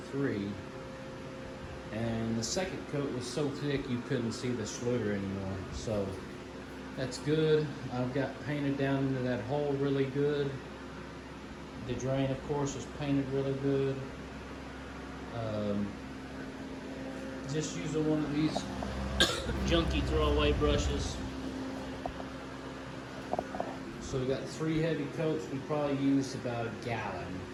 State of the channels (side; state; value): both; identical; correlation 1.00